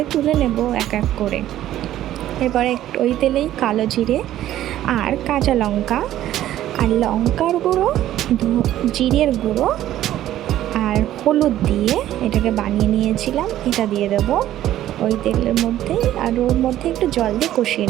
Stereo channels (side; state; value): left; quieter; 13.0 dB